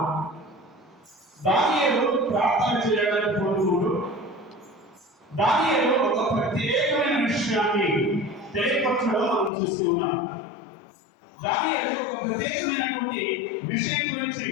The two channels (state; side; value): drops out; right; at 9.5 s